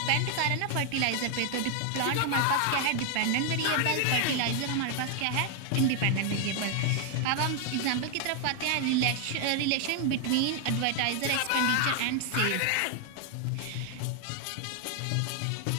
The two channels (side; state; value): both; different; correlation 0.00